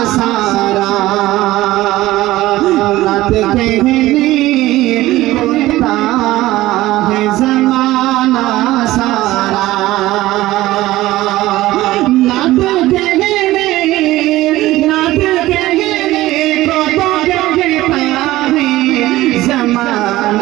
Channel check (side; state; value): left; quieter; 16.8 dB